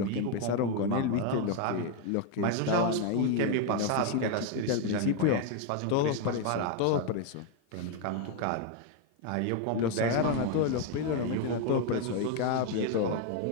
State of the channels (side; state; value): both; different; correlation 0.01